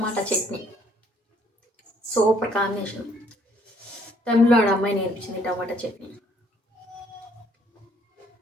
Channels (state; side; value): normal; both; correlation 0.64